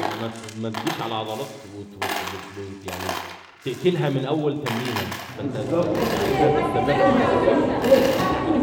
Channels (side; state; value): both; identical; correlation 1.00